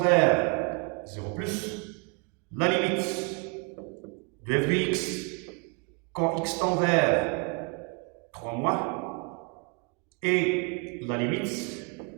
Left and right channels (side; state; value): left; quieter; 34.1 dB